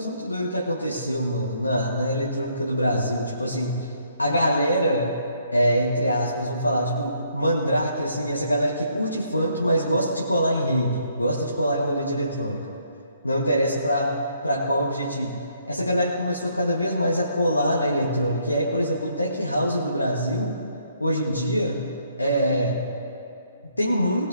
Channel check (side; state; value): both; inverted; correlation -0.69